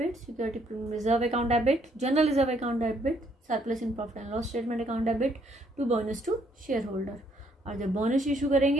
security premium reserve account debit, general reserve account debit, surplus in profit and loss statement account debit to bonus to share holder. और जब बोनस इशू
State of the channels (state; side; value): normal; both; correlation 0.69